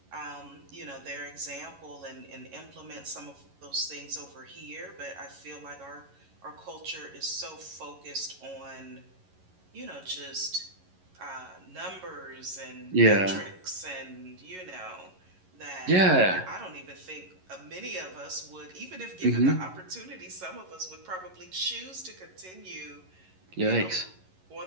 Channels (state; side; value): late; left; 11 ms